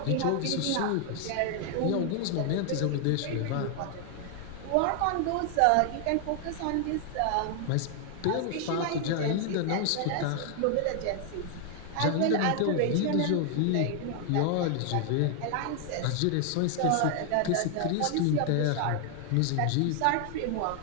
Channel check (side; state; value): both; different; correlation 0.00